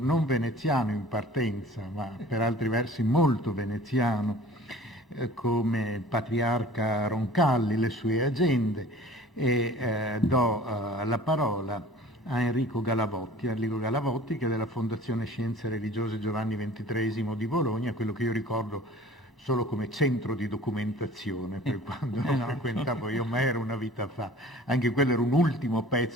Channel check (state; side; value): normal; both; correlation 0.45